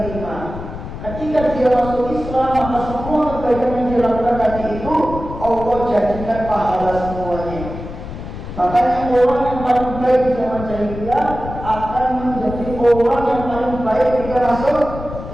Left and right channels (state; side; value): noise; left; rumble, 10 dB below the sound